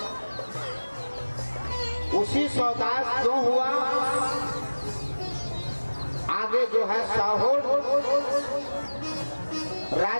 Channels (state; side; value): inverted; both; correlation -1.00